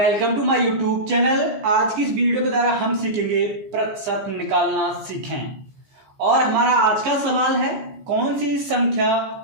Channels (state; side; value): late; left; 14 ms